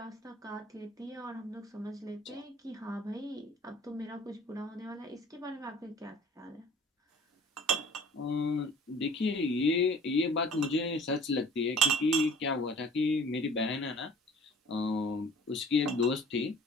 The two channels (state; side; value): normal; both; correlation 0.48